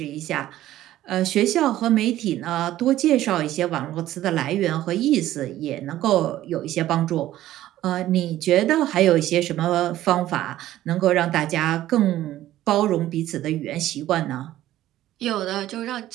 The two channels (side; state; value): left; quieter; 14.0 dB